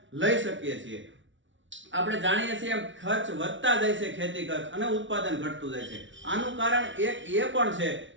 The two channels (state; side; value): late; left; 0.55 ms